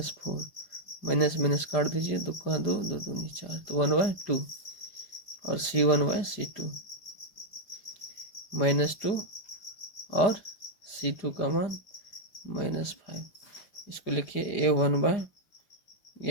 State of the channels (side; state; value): right; late; 5.0 ms